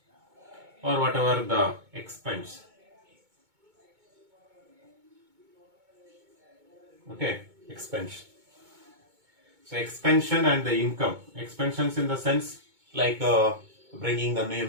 or whatever the expense. Okay, expansion. So expansion and the income. Expansions in the sense like bringing the new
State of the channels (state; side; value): late; left; 2.2 ms